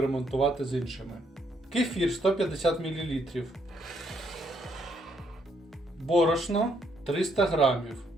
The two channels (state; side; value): normal; both; correlation 0.72